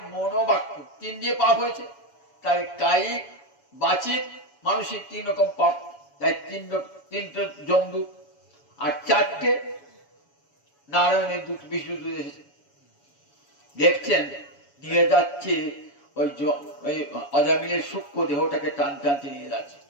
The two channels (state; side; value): late; right; 7.1 ms